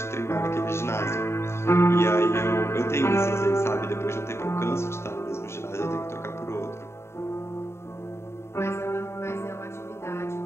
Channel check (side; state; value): right; late; 0.13 ms